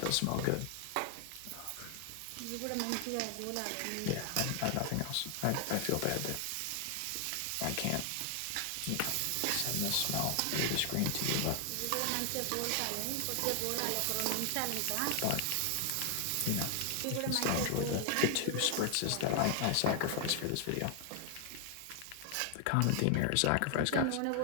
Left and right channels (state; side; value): different; both; correlation 0.00